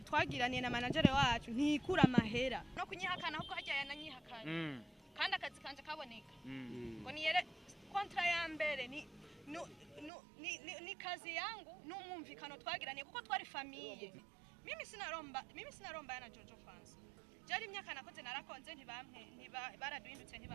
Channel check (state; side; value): drops out; left; at 10.1 s